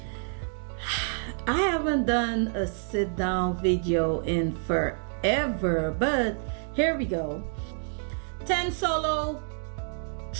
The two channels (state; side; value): silent; left; digital silence